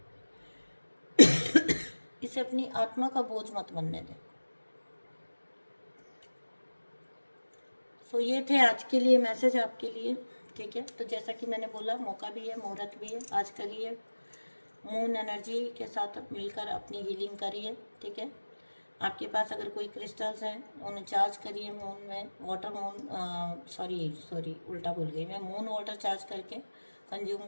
इसे अपनी आत्मा का बोझ मत बनने दें। सो ये थे आज के लिए मैसेज आपके लिए, ठीक है। तो जैसा कि मैंने बोला, मौका भी है, मुहूर्त भी है, आज करिए, मून एनर्जी के साथ मिलकर अपनी हीलिंग करिए, ठीक है। आपके पास अगर कोई क्रिस्टल्स हैं उन्हें चार्ज करिए मून में, वाटर मून सॉरी उल्टा भूल गई मैं, मून वाटर चार्ज करके कंज्यूम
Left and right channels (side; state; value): both; inverted; correlation -1.00